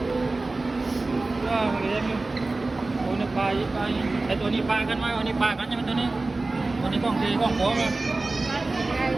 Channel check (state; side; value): quieter; left; 3.3 dB